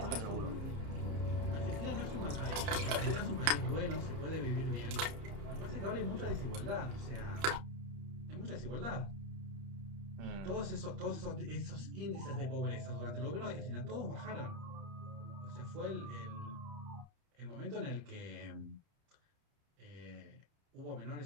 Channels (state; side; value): late; left; 31 ms